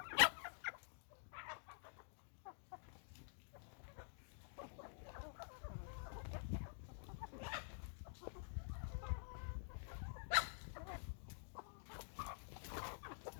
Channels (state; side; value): silent; right; digital silence